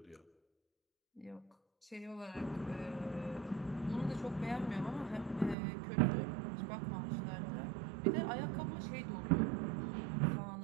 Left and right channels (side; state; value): left; drops out; at 5.6 s